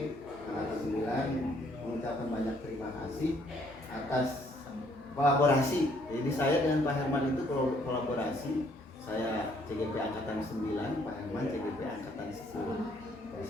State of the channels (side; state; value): both; normal; correlation 0.66